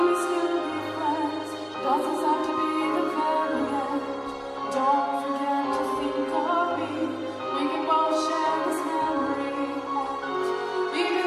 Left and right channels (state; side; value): identical; both; correlation 1.00